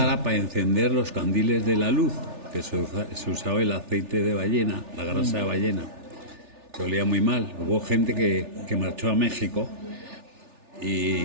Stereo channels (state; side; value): late; left; 3.4 ms